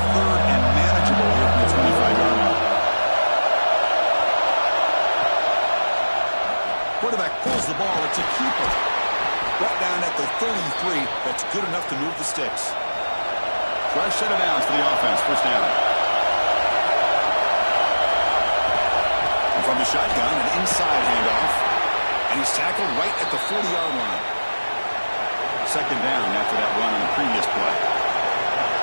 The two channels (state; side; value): inverted; both; correlation -1.00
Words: third and manageable here from the 25-yard line. Quarterback pulls the ball. It's a keeper. Brought down at the 33. That's good enough to move the sticks. Fresh set of downs for the offense. First down. And from the shotgun, an inside handoff. And he's tackled right at the 40-yard line. Second down after that run on the previous play.